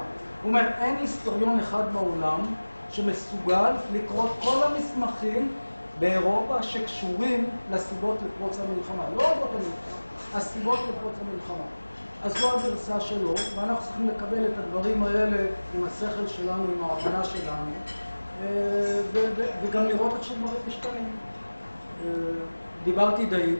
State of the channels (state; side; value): inverted; both; correlation -1.00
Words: הוא אומר, אין היסטוריון אחד בעולם שמסוגל לקרוא כל המסמכים באירופה שקשורים לסיבות לפרוץ המלחמה. לא אורות המלחמה, הסיבות לפרוץ המלחמה. אז זו הגרסה שלו, ואנחנו צריכים לקבל את הדברים האלה עם השכל שלנו, עם ההבנה שלנו, וגם לראות איך שדברים משתנים. דיברתי די,